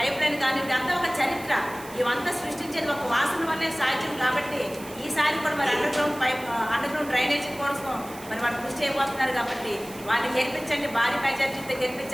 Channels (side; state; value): right; noise; hiss, 17 dB below the sound